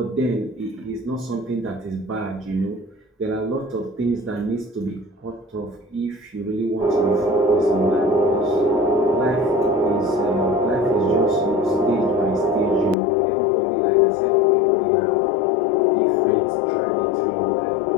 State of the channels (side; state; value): right; drops out; at 13.0 s